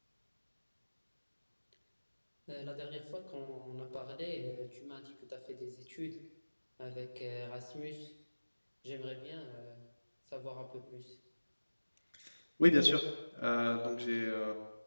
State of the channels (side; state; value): both; inverted; correlation -1.00